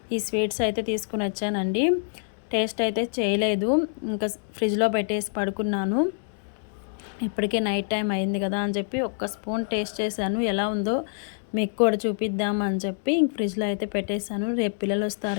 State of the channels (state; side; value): silent; right; digital silence